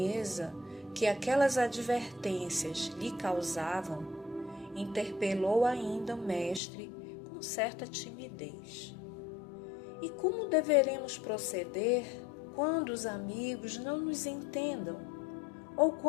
que aquelas advertências lhe causavam, interpelou ainda o mestre com certa timidez. E como deveremos proceder quando os amigos não nos entendam ou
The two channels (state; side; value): drops out; right; at 6.6 s